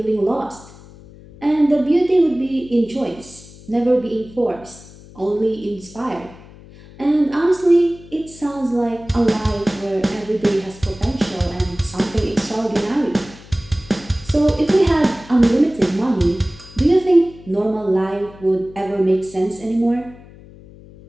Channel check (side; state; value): left; noise; hum, 20 dB below the sound